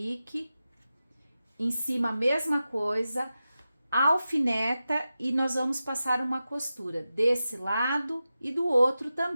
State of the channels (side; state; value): both; inverted; correlation -0.93